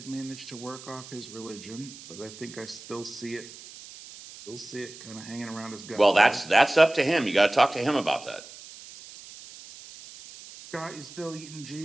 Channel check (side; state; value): right; noise; hiss, 16 dB below the sound